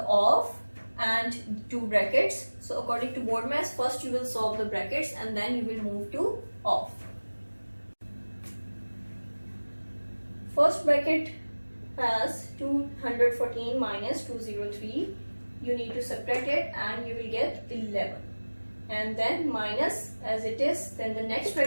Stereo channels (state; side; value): inverted; both; correlation -1.00